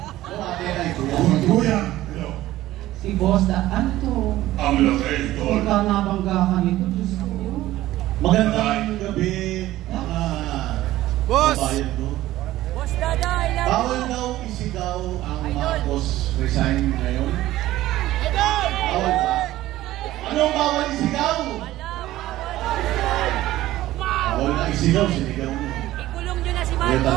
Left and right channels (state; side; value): quieter; left; 15.5 dB